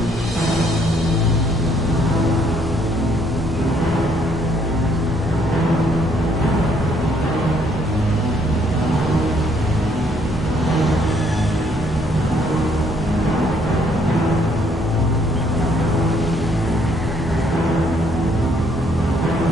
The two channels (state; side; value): normal; both; correlation 0.67